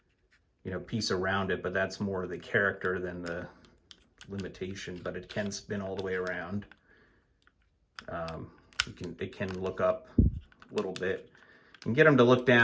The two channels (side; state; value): both; identical; correlation 1.00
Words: you know, piece around it, but that's more the character than the limitation, but it can spin all the way around. It can look up a little bit. You can get them to look